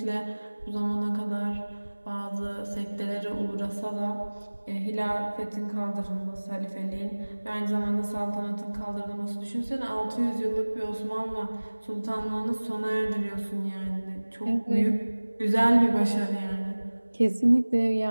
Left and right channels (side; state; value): both; inverted; correlation -1.00